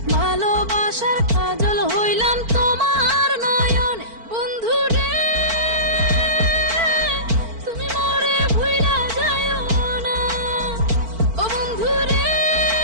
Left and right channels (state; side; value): late; left; 4.5 ms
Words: ভালোবাসার কাজল হইলাম তোমার নয়নে। বন্ধু রে তুমি মরে ভুইলা যাইও না, ও বন্ধু রে